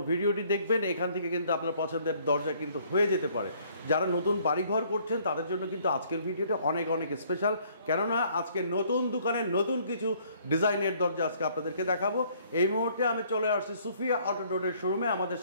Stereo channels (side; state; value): both; inverted; correlation -0.62